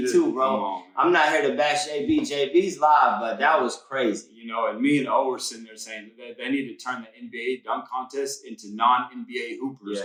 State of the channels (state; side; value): identical; both; correlation 1.00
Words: too, bro. I'm not here to bash JB. JB's live, but that was crazy. And me and O were sitting there saying that they need to turn the NBA dunk contest into non-NBA hoopers,